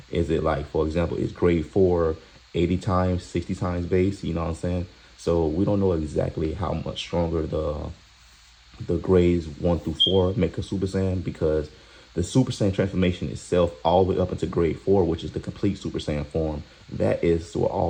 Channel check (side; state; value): both; identical; correlation 1.00